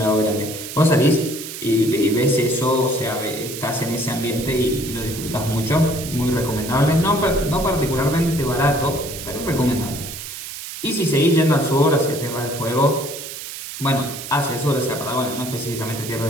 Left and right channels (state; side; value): noise; right; hiss, 9 dB below the sound